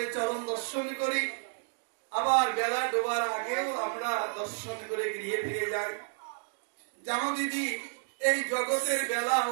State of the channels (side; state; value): left; silent; digital silence